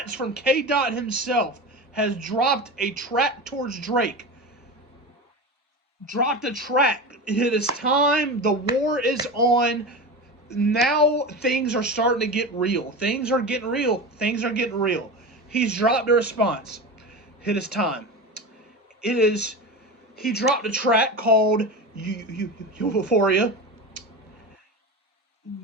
from K. Dot himself has dropped a track towards Drake. Dropped a track. It is time. The war is on. Now things are starting to get real. Things are getting real. Things are getting real. He's dropped a response. It is time. It is. He dropped a track called Euphoria,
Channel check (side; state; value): both; normal; correlation 0.26